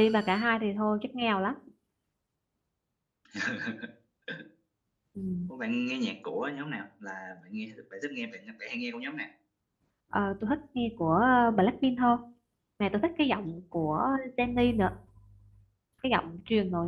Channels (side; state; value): both; identical; correlation 1.00